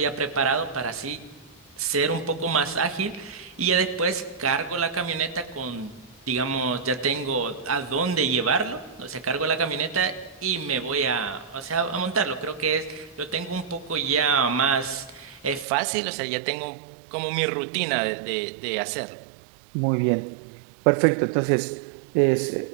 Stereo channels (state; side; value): drops out; left; at 15.7 s